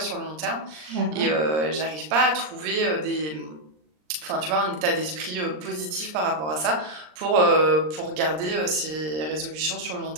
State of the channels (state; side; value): late; left; 39 ms